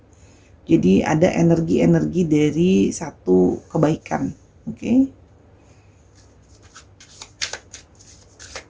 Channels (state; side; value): identical; both; correlation 1.00